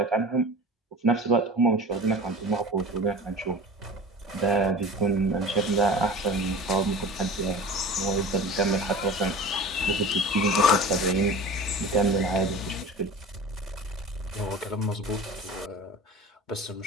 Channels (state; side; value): normal; both; correlation 0.36